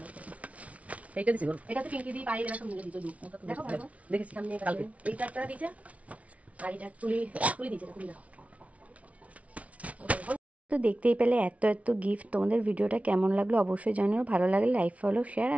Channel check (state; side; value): late; left; 0.066 ms